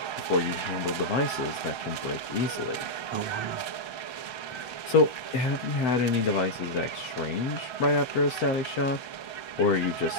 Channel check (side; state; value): right; late; 7.8 ms